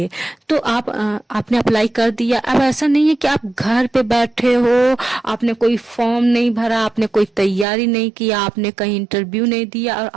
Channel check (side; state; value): left; drops out; at 7.7 s